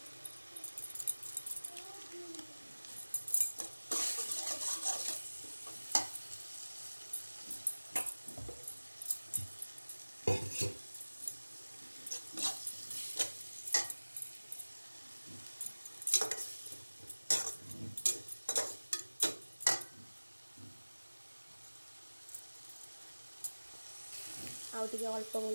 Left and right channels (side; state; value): both; inverted; correlation -1.00